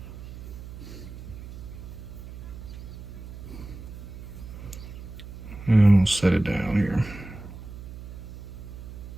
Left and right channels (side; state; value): right; noise; hum, 12 dB below the sound